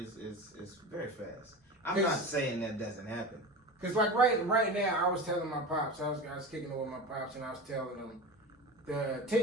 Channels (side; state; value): both; normal; correlation 0.28